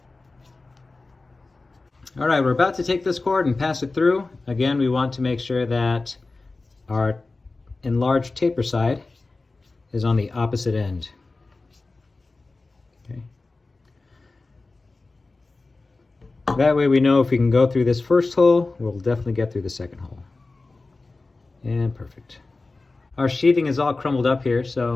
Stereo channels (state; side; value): quieter; right; 3.5 dB